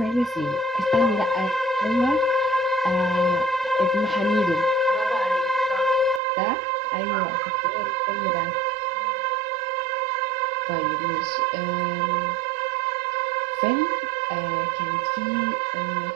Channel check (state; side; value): drops out; left; at 6.2 s